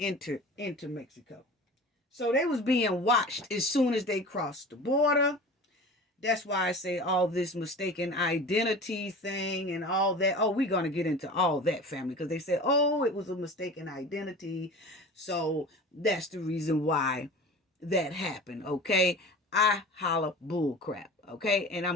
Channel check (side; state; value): both; normal; correlation 0.37